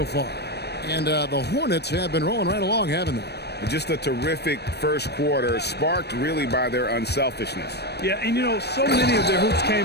far. And the Hornets have been rolling right along, haven't they? Just a terrific first quarter, sparked really by their unselfishness. Yeah, and you know, so many of their hoops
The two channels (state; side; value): late; right; 0.48 ms